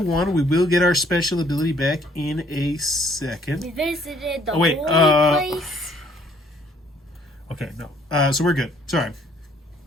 We will get our special ability back in a second. We visited the wait, holy place. Okay, no. So we're good. Sorry.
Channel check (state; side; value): normal; both; correlation 0.63